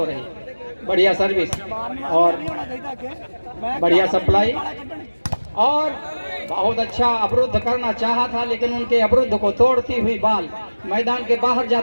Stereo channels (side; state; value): both; inverted; correlation -1.00